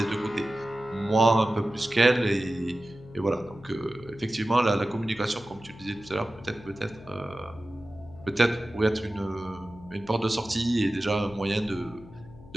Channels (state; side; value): noise; left; hum, 20 dB below the sound